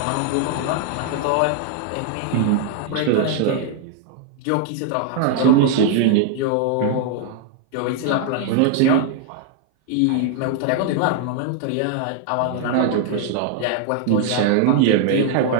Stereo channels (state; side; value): different; both; correlation 0.00